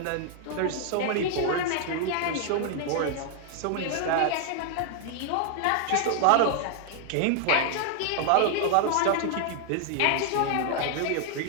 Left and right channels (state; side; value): different; both; correlation 0.00